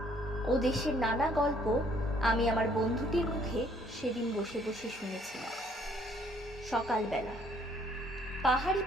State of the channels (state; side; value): normal; both; correlation 0.63